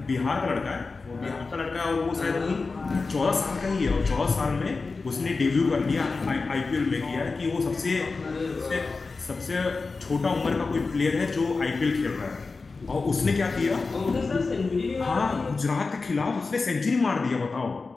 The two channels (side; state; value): right; quieter; 4.1 dB